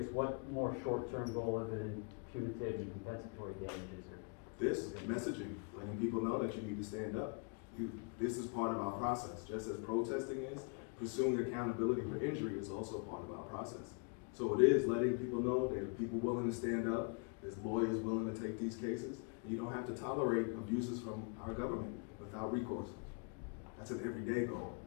what more short-term goal other than punitive and compensatory damages are? This messaging, letting people know that you need to stand up. This is part of our process. Just as protesting is, pursuing accountability for injury is also part of our process. So it is letting people know there are people willing to stand up, there's lawyers willing to take these cases, and you don't have to tolerate abuses from our government without recourse. That's an everyday goal.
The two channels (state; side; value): quieter; right; 38.2 dB